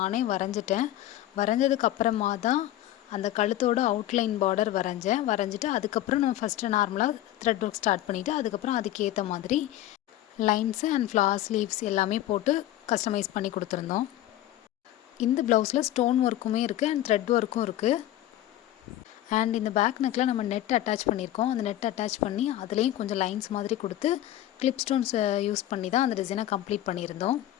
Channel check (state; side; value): quieter; right; 13.7 dB